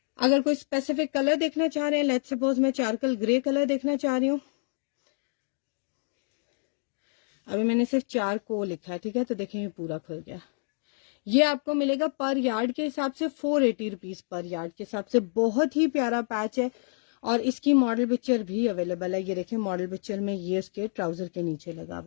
अगर कोई स्पेसिफिक कलर देखना चाह रहे हैं, लेट्स सपोज मैं चारकल ग्रे कलर देखना चाह रही हूँ, अभी मैंने सिर्फ 4 को लिखा है, ठीक है, तो देखें ये पूरा खुल गया। ये आपको मिलेगा पर यार्ड के हिसाब से 480 रुपीज पर यार्ड के हिसाब से। बहुत ही प्यारा पैच है और इसकी मॉडल पिक्चर भी अवेलेबल है। ये देखिए मॉडल पिक्चर में ये उसके ट्राउजर के नीचे लगा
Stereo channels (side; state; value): right; silent; digital silence